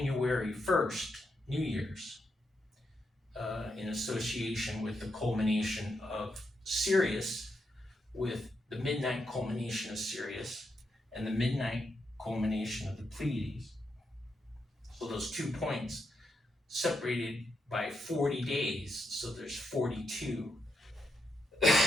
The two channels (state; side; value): normal; both; correlation 0.82